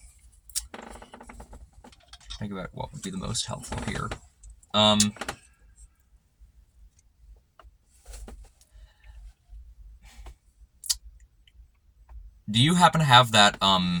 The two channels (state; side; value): identical; both; correlation 1.00